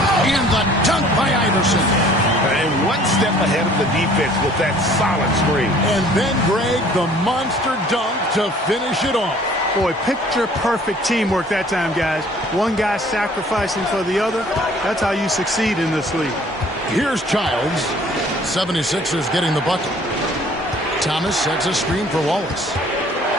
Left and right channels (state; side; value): normal; both; correlation 0.54